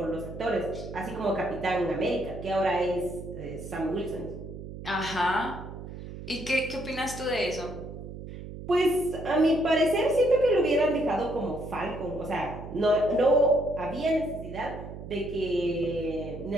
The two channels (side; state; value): right; noise; hum, 11 dB below the sound